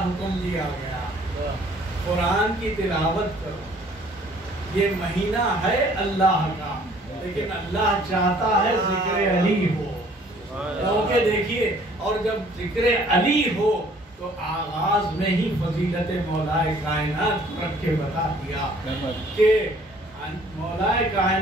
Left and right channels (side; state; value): both; normal; correlation 0.57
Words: حکم دیا گیا، قرآن کی تلاوت کرو، یہ مہینہ ہے اللہ کا، لیکن اللہ چاہتا ہے ذکر علی ہو، کیونکہ دیکھیے، اور جب ذکر علی ہو تو آغاز میں ہی فضیلت مولائے کائنات رکھ کے بتا دیا کہ مولائے